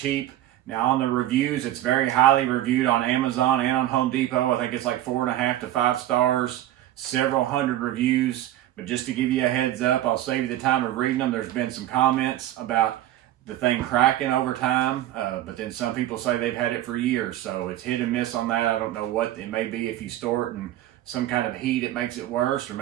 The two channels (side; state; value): left; quieter; 13.5 dB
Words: Now on the reviews, it's very highly reviewed on Amazon and on Home Depot. I think it's like 4.5 to 5 stars, several hundred reviews. But just to give you a heads up, I'll save you the time of reading them. There's been some comments about the thing cracking over time, but then some people say they've had it for years, so it's hit and miss on that. I don't know what it may be. If you store it in some kind of heat, it makes it worse, or